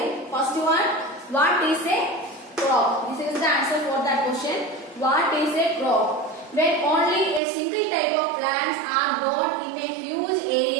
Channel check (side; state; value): left; drops out; at 7.4 s